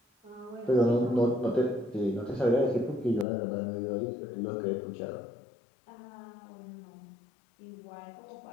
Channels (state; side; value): drops out; right; at 3.2 s